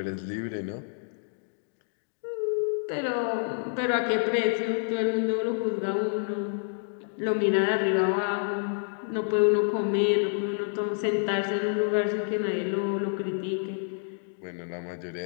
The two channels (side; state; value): right; silent; digital silence